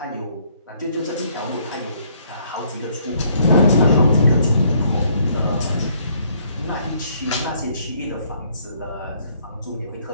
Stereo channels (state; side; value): inverted; both; correlation -0.66